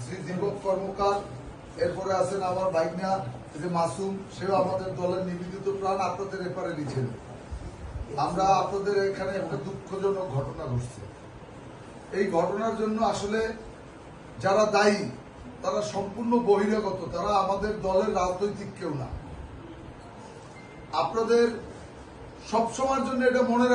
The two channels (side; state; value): both; identical; correlation 1.00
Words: শ্রী দীপক কর্মকার, এরপরে আছেন আমার ভাইগনা যে মাসুম, সেও আমাদের দলের নিবেদিত প্রাণ, আপনাদের এপারে লিখেন। আমরা আপনাদের এখানে একটা দুঃখজনক ঘটনা ঘটছে। এই ঘটনার জন্য আসলে যারা দায়ী তারা সম্পূর্ণ বহিরাগত, তারা আমাদের দলের রাজনৈতিক কেউ না। আপনাদের সবসময়ের জন্য এটা মনে